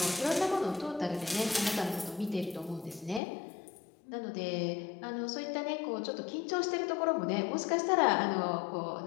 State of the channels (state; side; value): drops out; right; at 3.2 s